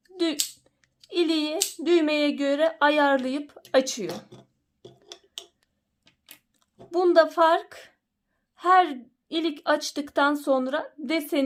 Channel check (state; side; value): identical; both; correlation 1.00